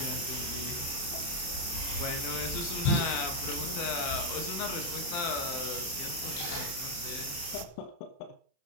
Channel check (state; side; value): late; right; 28 ms